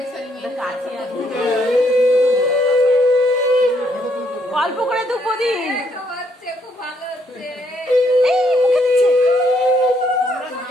অল্প করে দুপদি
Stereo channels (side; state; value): both; normal; correlation 0.72